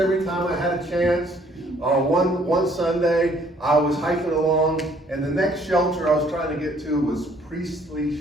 time I had a chance. One Sunday, I was hiking along, and the next shelter I was trying to get to was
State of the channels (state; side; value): normal; both; correlation 0.62